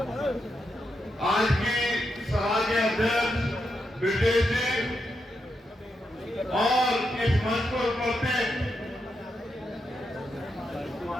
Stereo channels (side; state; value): both; normal; correlation 0.84